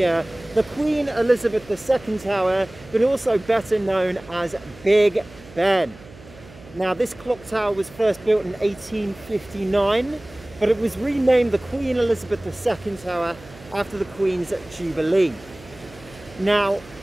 the Queen Elizabeth II Tower, but also better known as Big Ben. Now, this clock tower was first built in 1859, but it was renamed the Queen Elizabeth II Tower after the Queen's Jubilee. Now,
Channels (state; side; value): noise; right; hum, 21 dB below the sound